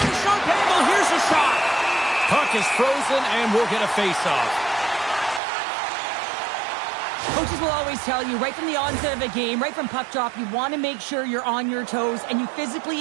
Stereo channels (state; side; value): drops out; left; at 5.4 s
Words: the sharp angle, here's a shot. Puck is frozen, and we'll get a face-off. Coaches will always tell you, right from the onset of a game, right from puck drop, you want to make sure you're on your toes and you